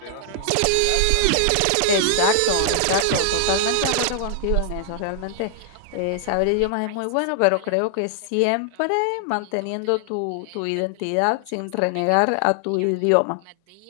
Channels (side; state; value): both; different; correlation 0.00